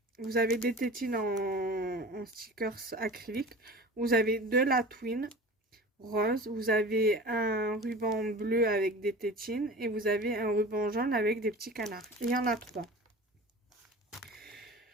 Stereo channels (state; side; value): normal; both; correlation 0.36